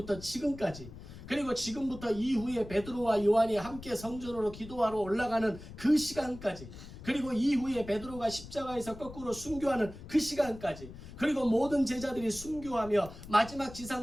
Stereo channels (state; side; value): noise; left; rumble, 14 dB below the sound